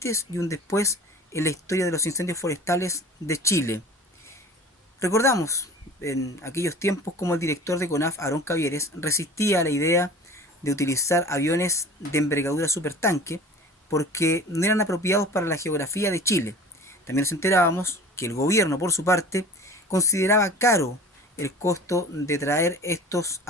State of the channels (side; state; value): both; normal; correlation 0.40